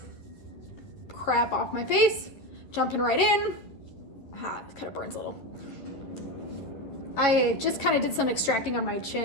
crap off my face. Jumping right in. It kind of burns a little. I just kind of did some extracting on my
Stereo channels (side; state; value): right; late; 11 ms